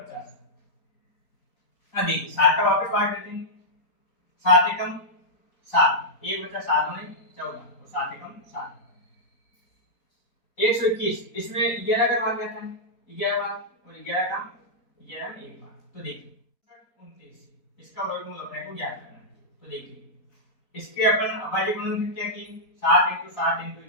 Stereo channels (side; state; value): right; late; 4.0 ms